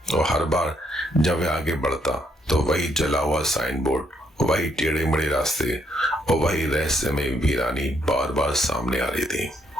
और हर बार जब वह आगे बढ़ता तो वही जला हुआ साइन बोर्ड, वही टेढ़े मेढ़े रास्ते और वही रहस्यमय वीरानी बार बार सामने आ रही थी।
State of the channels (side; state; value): both; normal; correlation 0.73